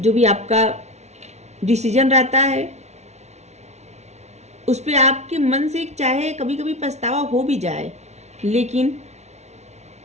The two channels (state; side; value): late; left; 0.32 ms